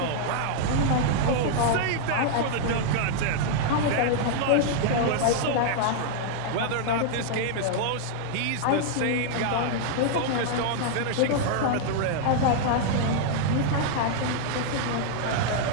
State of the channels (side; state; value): both; different; correlation -0.01